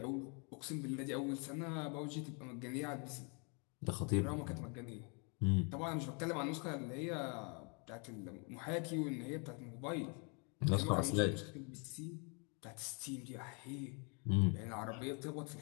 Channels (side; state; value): right; quieter; 35.5 dB